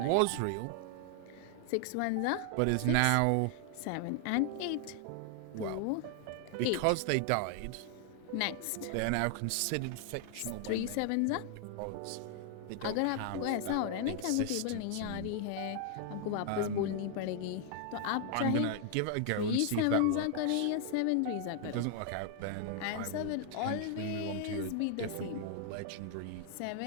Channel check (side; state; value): both; different; correlation 0.00